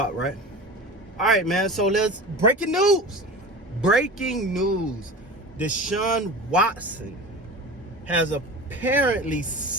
right? All right, man. So breaking news. Desaun Watson has apparently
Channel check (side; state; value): both; normal; correlation 0.32